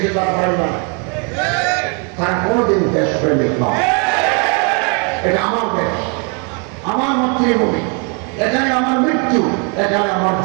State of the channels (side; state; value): left; quieter; 35.9 dB